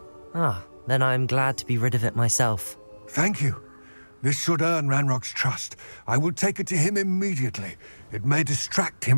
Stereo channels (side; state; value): both; inverted; correlation -1.00